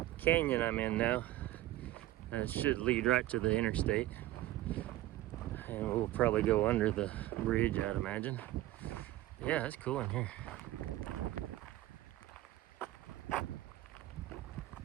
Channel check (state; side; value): quieter; left; 15.6 dB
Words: canyon I'm in now. And it should lead right to the interstate. And we'll probably go under the bridge, I'd imagine. Yeah, it's cool in here.